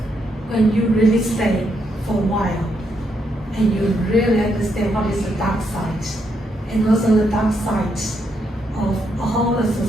you really stay for a while, and you really understand what is the dark side, and also the dark side of a whole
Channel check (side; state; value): both; normal; correlation 0.78